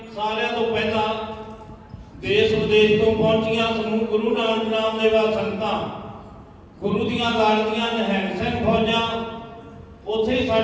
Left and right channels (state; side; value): identical; both; correlation 1.00